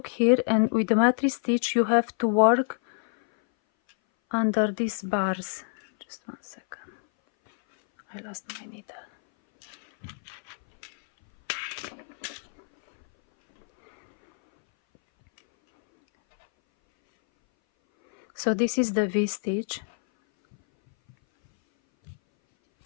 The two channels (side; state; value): right; silent; 59 dB below the other